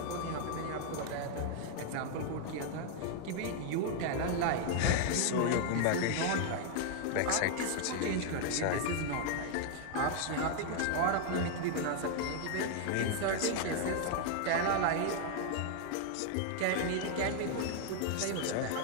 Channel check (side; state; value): both; different; correlation 0.00